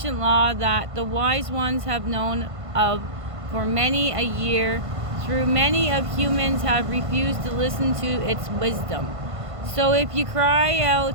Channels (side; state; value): left; late; 1.5 ms